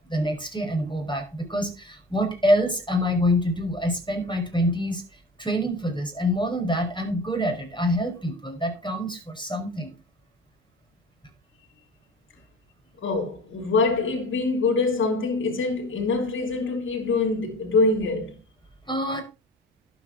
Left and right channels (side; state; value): both; normal; correlation 0.39